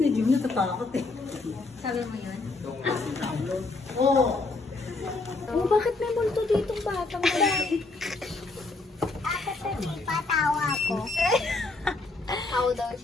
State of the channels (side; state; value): right; quieter; 3.4 dB